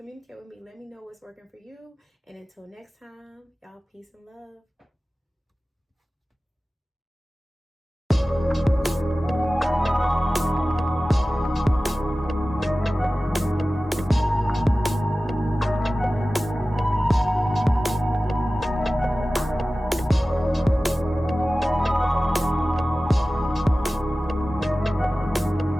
with me, let me know what's working for you. And until next time, y'all, peace and love.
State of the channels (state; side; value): normal; both; correlation 0.96